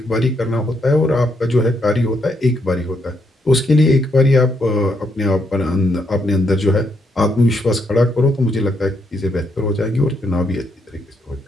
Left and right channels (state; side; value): normal; both; correlation 0.77